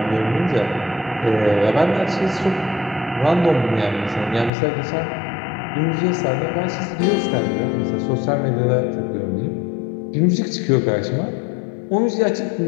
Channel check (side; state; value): right; drops out; at 4.5 s